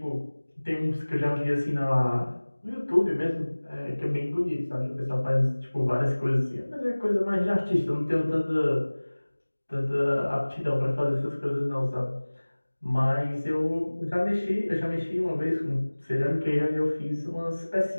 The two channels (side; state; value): both; inverted; correlation -1.00